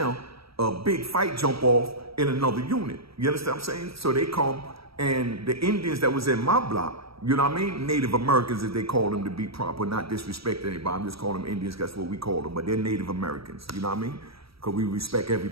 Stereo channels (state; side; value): late; left; 0.76 ms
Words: a big fight jump off in another unit. You understand what I'm saying? So they come, and the Indians that was in my block, you know what I mean? Native Americans, as they call them, to be proper, not disrespect anybody. I'm just calling them Indians, that's what we call them. But they're Native Americans, you know what I mean? Because we respect